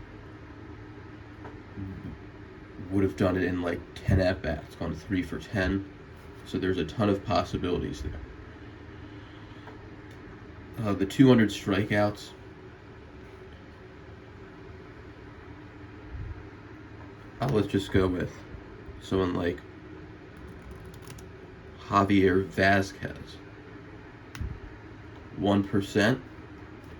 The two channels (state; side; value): identical; both; correlation 1.00